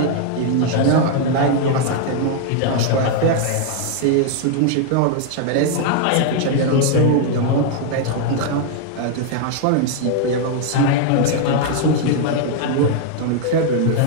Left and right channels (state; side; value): different; both; correlation 0.00